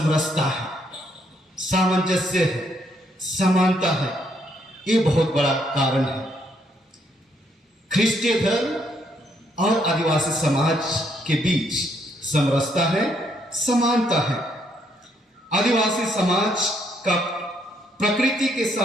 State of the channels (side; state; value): both; normal; correlation 0.72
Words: है, सामंजस्य है, समानता है। ये बहुत बड़ा कारण है। ख्रिस्तीय धर्म और आदिवासी समाज के बीच समरसता है, समानता है। आदिवासी समाज का प्रकृति के